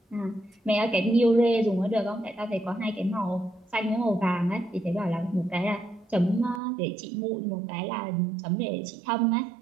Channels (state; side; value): drops out; left; at 6.6 s